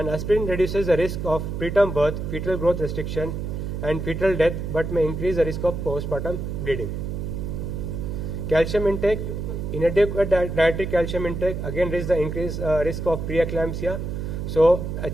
aspirin reduces the risk of preterm birth, fetal growth restriction, and fetal death, but may increase the risk of postpartum bleeding. Calcium intake, inadequate dietary calcium intake again raises the increased risk of preeclampsia. So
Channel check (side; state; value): right; noise; hum, 4 dB below the sound